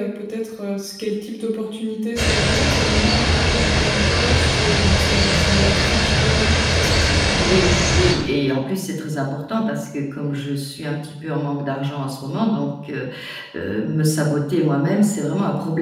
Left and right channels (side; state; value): both; identical; correlation 1.00